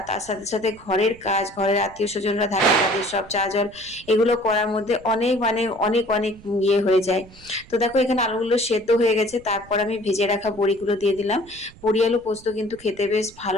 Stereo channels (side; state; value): right; noise; rumble, 23 dB below the sound